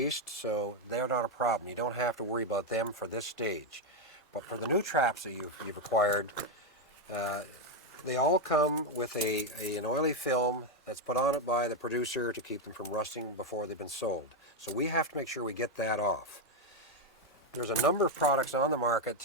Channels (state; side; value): normal; both; correlation 0.05